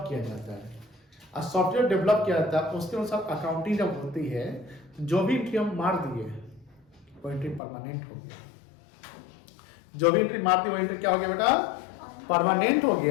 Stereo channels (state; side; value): drops out; right; at 7.6 s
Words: किया जाता है, और सॉफ्टवेयर डेवलप किया जाता है, उसके अनुसार अकाउंटिंग जब होती है तो जो भी एंट्री हम मार दिए वो एंट्री परमानेंट हो गया, जो भी एंट्री मार दी वो एंट्री क्या हो गया बेटा? परमानेंट हो